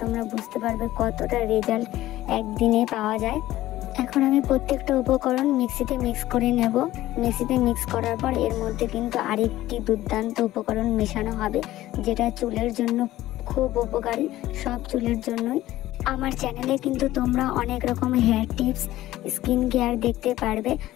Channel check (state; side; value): quieter; right; 15.3 dB